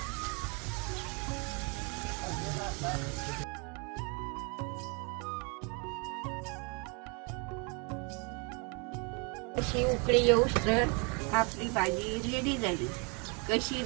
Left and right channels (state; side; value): quieter; left; 33.0 dB